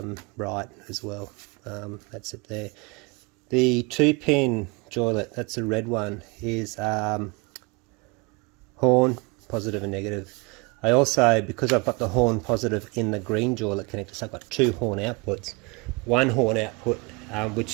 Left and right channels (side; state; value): left; quieter; 28.5 dB